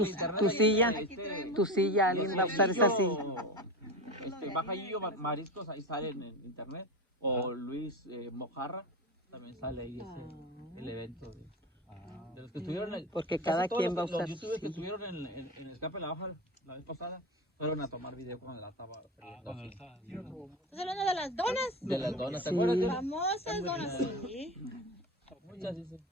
Tu silla, alguien va a usar esa silla. Baja Gillo Mariscos, ahí sale en internet, o Luis Mojarra, también sale ahí el evento de los que estuvieron, porque cada quien va a usar los youtubers que estuvieron en el escape de la baja la vez pasada fueron a tomar video cuando la estaba ¿Estás hablando de las donas? de las donas, ¿te acuerdas? Famosas donas, sí. Muchas dicen.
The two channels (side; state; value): both; normal; correlation 0.24